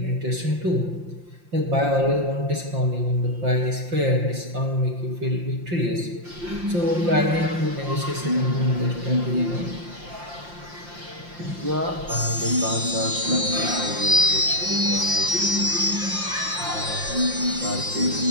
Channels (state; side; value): late; left; 5.7 ms